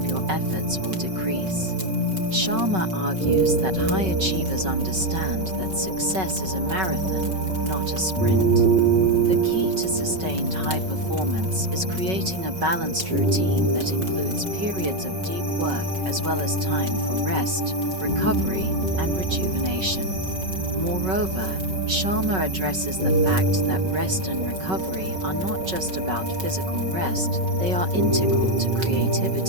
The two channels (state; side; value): late; left; 5.3 ms